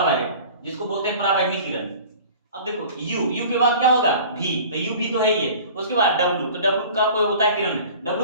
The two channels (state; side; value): inverted; both; correlation -0.43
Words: वायलेट, जिसको बोलते हैं पराबैंगनी किरण। अब देखो U के बाद क्या होगा, V, तो U भी तो है ही है। उसके बाद W, तो W का कोई होता है किरण,